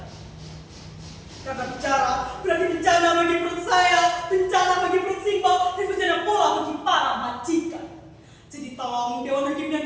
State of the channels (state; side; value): identical; both; correlation 1.00